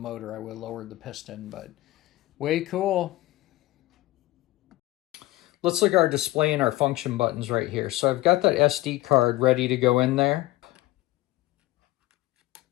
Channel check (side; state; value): right; quieter; 18.1 dB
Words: I would have lowered the piston, but way cool. Let's look at our display and our function buttons right here. So I've got that SD card ready to go in there.